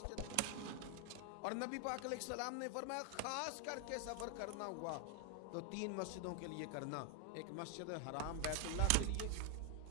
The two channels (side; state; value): both; different; correlation 0.00